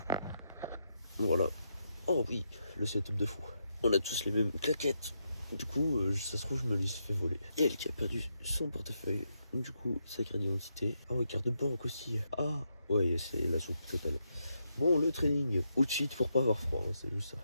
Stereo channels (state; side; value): inverted; both; correlation -0.81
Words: Voilà. Oh oui, le setup de fou. On a tous les mêmes claquettes. Du coup, ça se trouve, je me les ai fait voler. Et elle qui a perdu son portefeuille. Du coup, sa carte d'identité. Ah ouais, carte de banque aussi. Ah ouais, c'est la soupe totale. Bon, le training. Ou cheat pour pas avoir froid, hein, c'est juste ça.